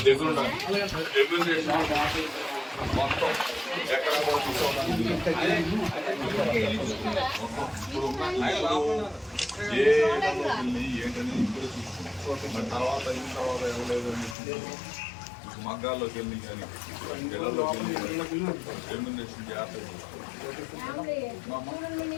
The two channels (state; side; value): drops out; right; at 14.4 s